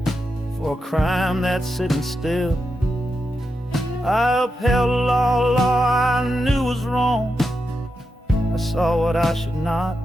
for a crime that's sitting still. I upheld a law I knew was wrong. I saw what I should not,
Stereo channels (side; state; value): both; normal; correlation 0.87